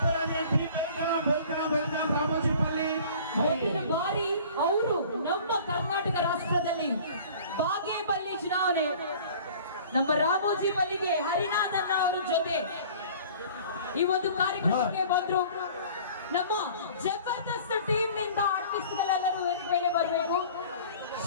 ವೆಲ್ಕಮ್ ರಾಮೋಜಿಪಲ್ಲಿ. ಮುಂದಿನ ಬಾರಿ ಅವರು ನಮ್ಮ ಕರ್ನಾಟಕ ರಾಷ್ಟ್ರದಲ್ಲಿ ಬಾಗೇಪಲ್ಲಿ ಚುನಾವಣೆ ನಮ್ಮ ರಾಮೋಜಿಪಲ್ಲಿಗೆ ಹರಿನಾಥನ್ ಅವರ ಜೊತೆ ಈ ಒಂದು ಕಾರ್ಯಕ್ರಮಕ್ಕೆ ಬಂದ್ರು. ನಮ್ಮ ಜಬರ್ದಸ್ತ್ ಟೀಮ್ ನಿಂದ ಆರ್ಟಿಸ್ಟ್ಗಳೆಲ್ಲರೂ ವೇದಿಕೆ ಮೇಲೆ ಬರಬೇಕು.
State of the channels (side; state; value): both; inverted; correlation -0.47